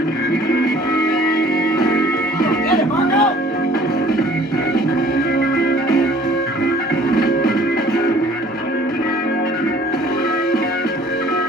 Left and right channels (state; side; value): normal; both; correlation 0.54